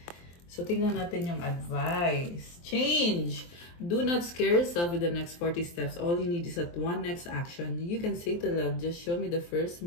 So, tingnan natin yung advice. Change. Do not scare yourself with the next 40 steps. All you need is that one next action. You can say to love, just show me the first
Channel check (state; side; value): late; right; 23 ms